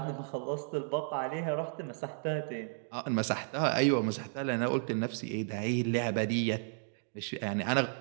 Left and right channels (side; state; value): left; silent; digital silence